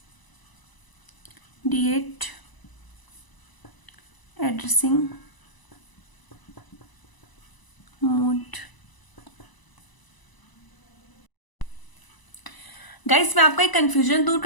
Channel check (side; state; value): right; late; 1.0 ms